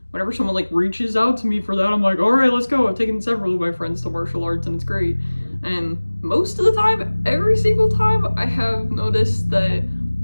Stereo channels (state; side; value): inverted; both; correlation -1.00